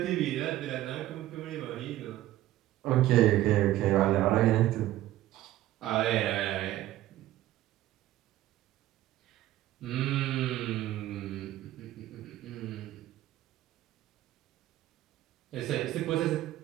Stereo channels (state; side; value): quieter; left; 14.6 dB